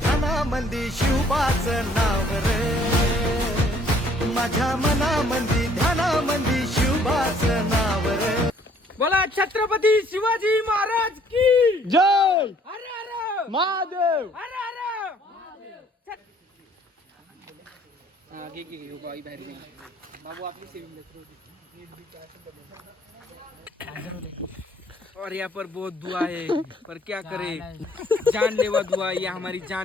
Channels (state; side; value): normal; both; correlation 0.61